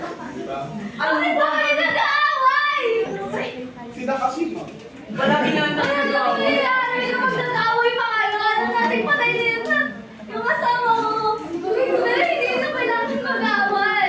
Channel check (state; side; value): identical; both; correlation 1.00